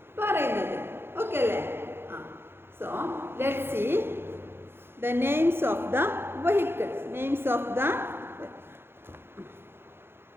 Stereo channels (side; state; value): left; late; 0.11 ms